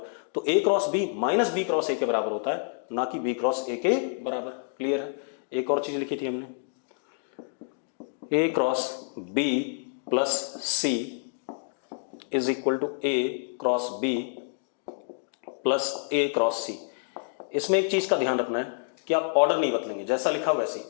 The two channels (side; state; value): right; silent; digital silence